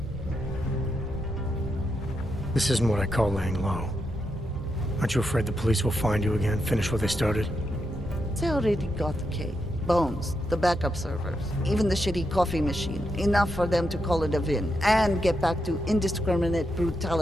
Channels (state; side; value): normal; both; correlation 0.84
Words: This isn't what I call laying low. Aren't you afraid the police will find you again, finish what they started? They already got the K. Bones, the backup servers, even the shitty coffee machine. Enough for them to call it a win and get back to indiscriminate